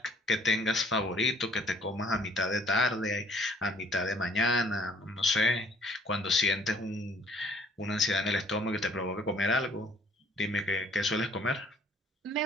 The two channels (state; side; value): normal; both; correlation 0.58